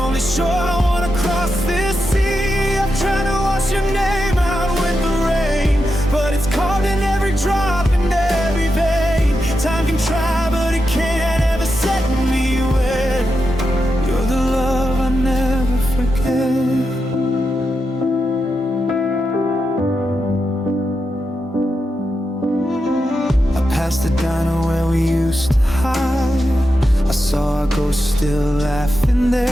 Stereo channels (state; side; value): normal; both; correlation 0.87